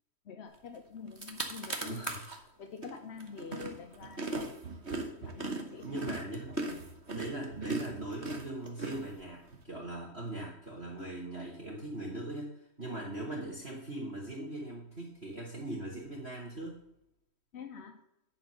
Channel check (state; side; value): late; right; 3.1 ms